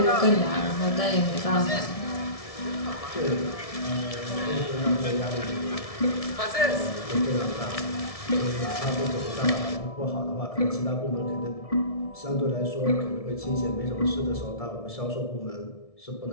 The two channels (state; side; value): late; right; 1.7 ms